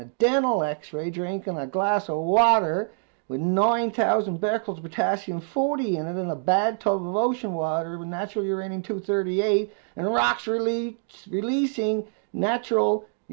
a dental x-ray, drinking a glass of water with 9,000 becquerels of potassium-40 in it, in a bad tub of ocean water with natural uranium-238, and rocks releasing natural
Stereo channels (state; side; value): silent; left; digital silence